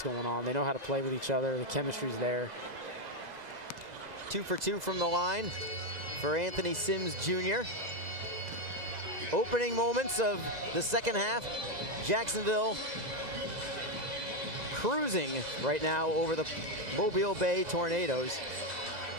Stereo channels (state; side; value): late; left; 2.0 ms